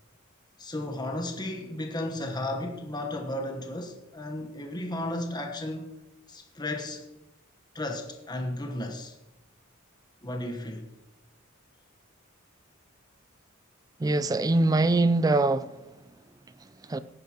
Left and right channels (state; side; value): normal; both; correlation 0.70